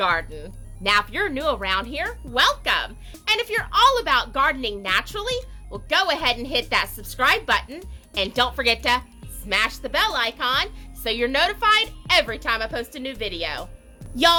Now, if you're new around here, welcome. And if you're all about gardening naturally, well, go ahead and hit that subscribe button. And don't forget to smash the bell icon so you're notified every time I post a new video.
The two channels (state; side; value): identical; both; correlation 1.00